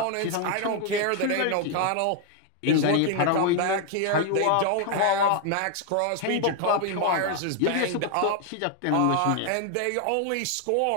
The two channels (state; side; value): different; both; correlation 0.00